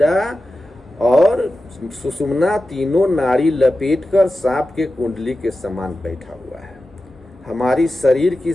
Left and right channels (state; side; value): normal; both; correlation 0.93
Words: और सुषुम्ना तीनों नाड़ी लपेटकर सांप के कुंडली के समान बैठा हुआ है। हमारी शरीर की